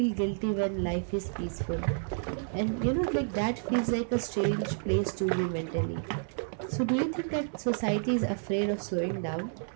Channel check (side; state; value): left; silent; digital silence